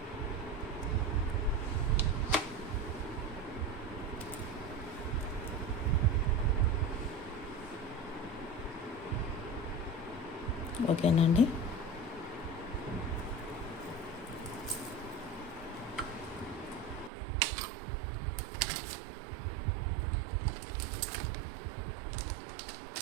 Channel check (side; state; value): left; drops out; at 17.1 s